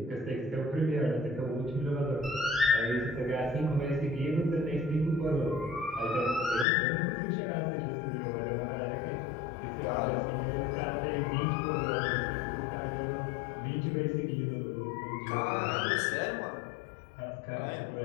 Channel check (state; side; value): drops out; right; at 6.7 s